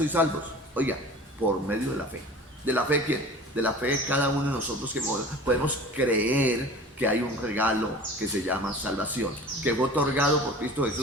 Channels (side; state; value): both; normal; correlation 0.40